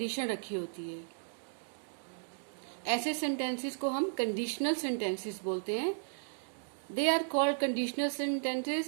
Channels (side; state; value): left; silent; digital silence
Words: रखी होती है। ऐसे सेंटेंसेस को हम कंडीशनल सेंटेंसेस बोलते हैं। They are called conditional sentences